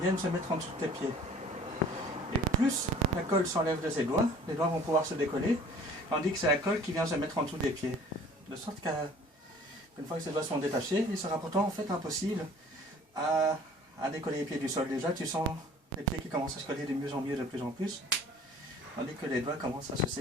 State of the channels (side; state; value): both; normal; correlation 0.50